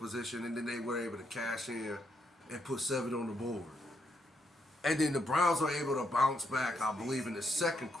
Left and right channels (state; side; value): normal; both; correlation 0.78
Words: and then they were able to cash in and put 7 on the board. And then the Browns were able to bounce back, I believe, in the second